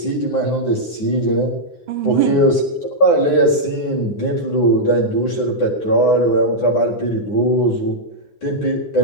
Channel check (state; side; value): late; right; 9.6 ms